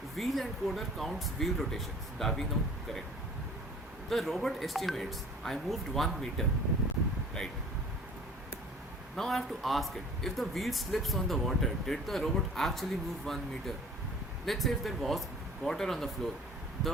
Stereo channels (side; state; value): both; normal; correlation 0.47